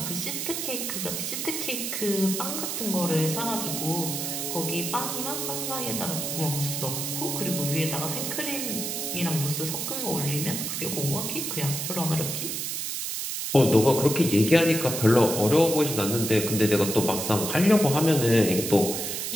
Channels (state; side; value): noise; right; hiss, 3 dB below the sound